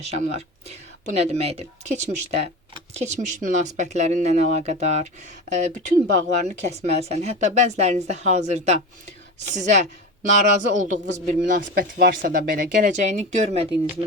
Bu nə deməkdir? Keçmiş münasibətlərinlə əlaqədar bütün bağlarını kəsməlisən. Hətta bəzilərinizdə hazırda sizə narazı olduğunuz bir münasibət varsa da belə, gələcəyini görmədiyiniz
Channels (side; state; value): both; normal; correlation 0.26